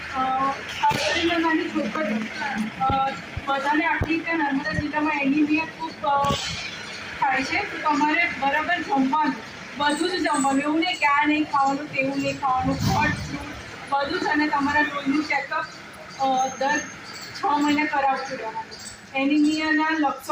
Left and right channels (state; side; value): identical; both; correlation 1.00